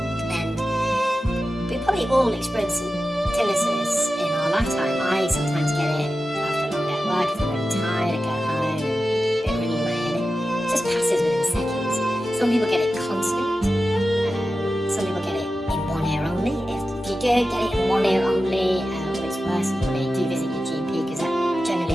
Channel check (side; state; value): both; normal; correlation 0.93